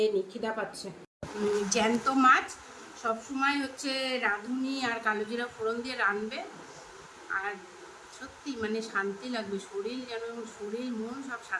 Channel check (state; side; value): identical; both; correlation 1.00